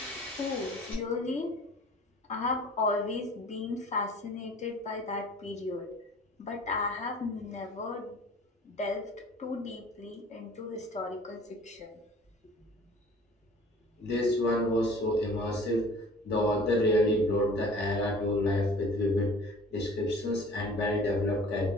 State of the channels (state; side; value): normal; both; correlation 0.47